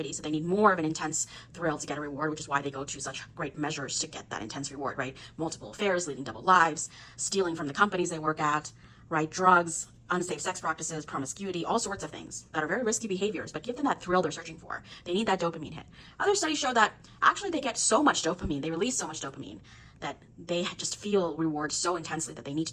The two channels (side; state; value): both; identical; correlation 1.00